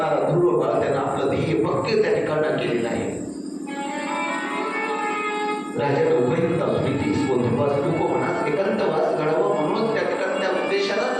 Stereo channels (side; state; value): both; identical; correlation 1.00